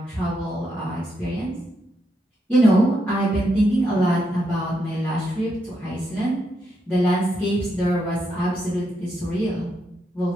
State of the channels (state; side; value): normal; both; correlation 0.80